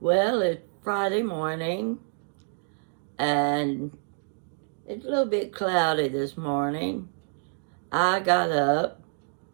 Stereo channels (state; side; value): silent; left; 59 dB below the other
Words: Well, it's Friday morning, and it's a little bit cloudy this morning. I got up,